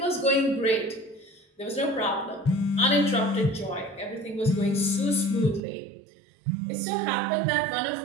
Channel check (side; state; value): left; drops out; at 5.6 s